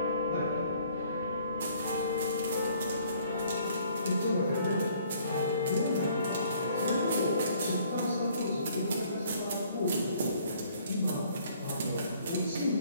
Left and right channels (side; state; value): both; inverted; correlation -0.60